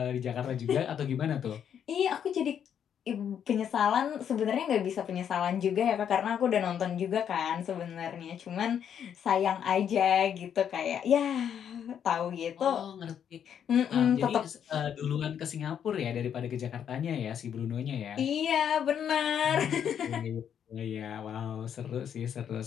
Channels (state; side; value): quieter; right; 8.7 dB